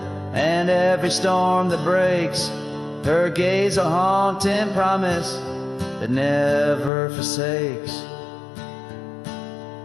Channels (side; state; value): right; drops out; at 6.9 s